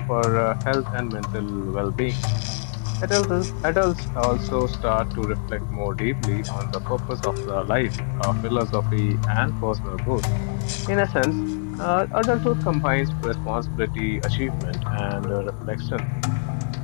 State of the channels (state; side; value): silent; right; digital silence